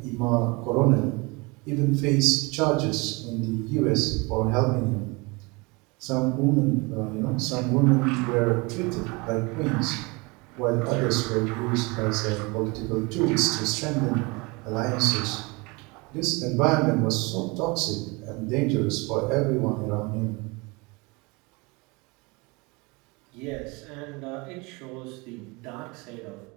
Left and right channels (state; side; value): quieter; left; 26.8 dB